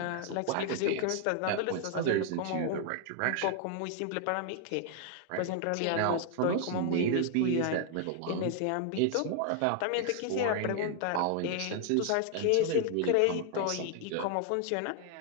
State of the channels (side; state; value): both; different; correlation 0.00